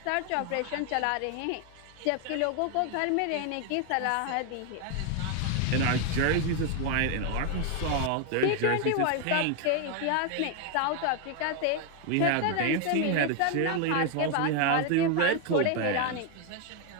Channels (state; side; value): different; both; correlation 0.01